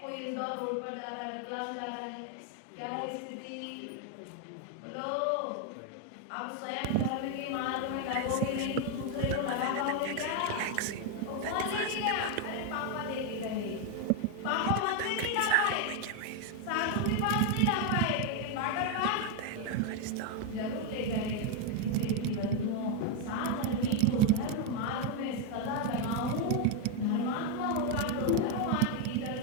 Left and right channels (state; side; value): different; both; correlation 0.01